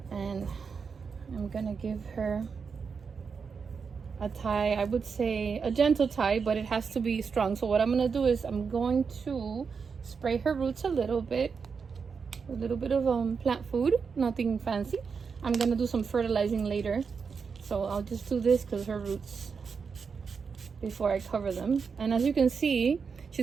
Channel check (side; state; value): left; quieter; 5.7 dB